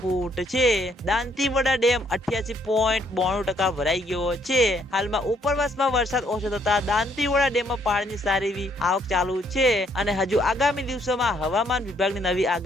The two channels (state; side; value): normal; both; correlation 0.68